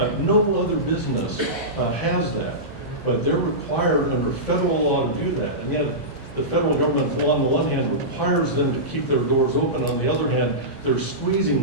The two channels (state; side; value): normal; both; correlation -0.17